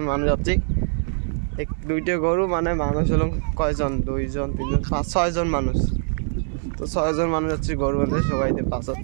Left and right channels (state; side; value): silent; left; 63 dB below the other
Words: মানুষ যাচ্ছি এক দুইটা গরু মানে মানুষ হলো কয়জন 2 জন 3 জন 5-6 জন মানুষ তো 6 জন মানুষ যাচ্ছি গরু বাঁধতে সবাই পাঁচ